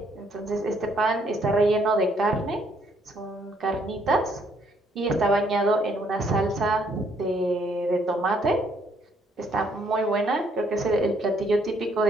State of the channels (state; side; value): normal; both; correlation 0.68